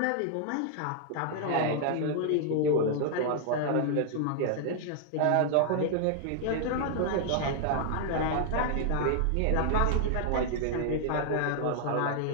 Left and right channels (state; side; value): different; both; correlation 0.00